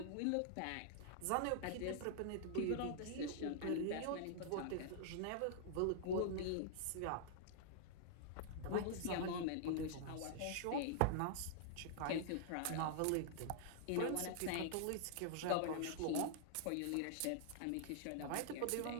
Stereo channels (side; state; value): both; different; correlation -0.01